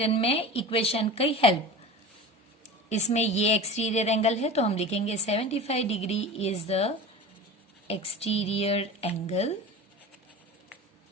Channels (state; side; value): normal; both; correlation 0.33